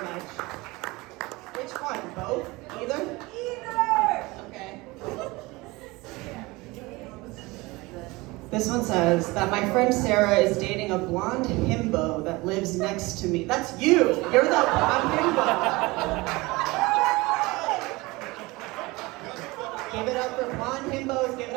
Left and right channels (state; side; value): quieter; left; 22.6 dB